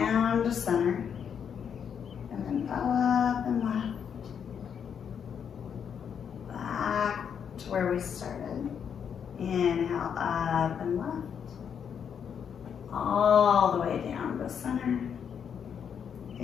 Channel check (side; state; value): right; quieter; 7.6 dB